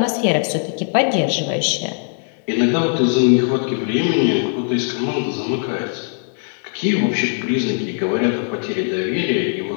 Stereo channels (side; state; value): right; silent; digital silence